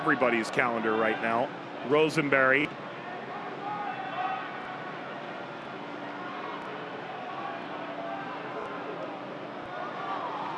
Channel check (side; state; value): both; identical; correlation 1.00